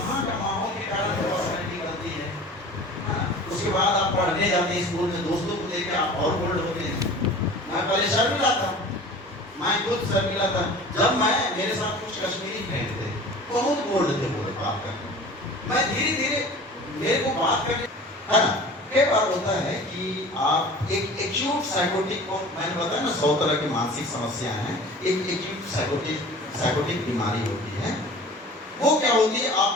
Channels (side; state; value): both; normal; correlation 0.41